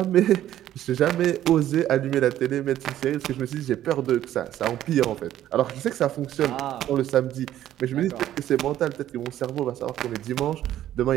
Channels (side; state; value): left; quieter; 12.4 dB